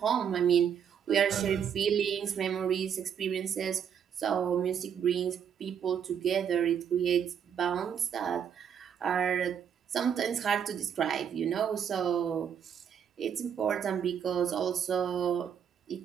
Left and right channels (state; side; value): quieter; left; 8.1 dB